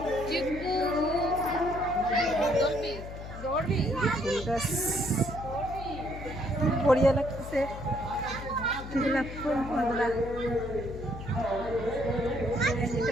গাছ, বড়িয়া লাগতেছে। গোলাপ ফুল বন্ধুরা,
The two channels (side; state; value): left; noise; hum, 11 dB below the sound